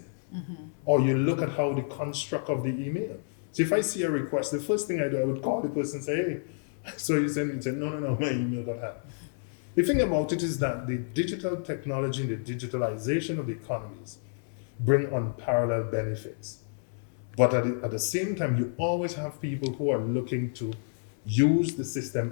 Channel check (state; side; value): silent; right; digital silence